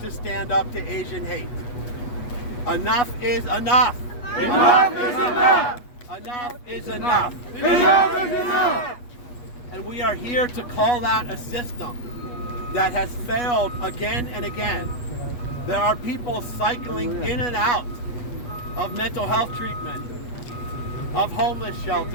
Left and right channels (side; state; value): right; late; 8.2 ms